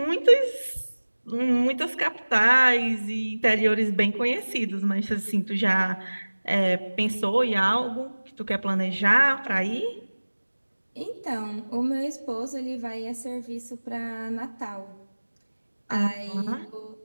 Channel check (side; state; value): both; inverted; correlation -1.00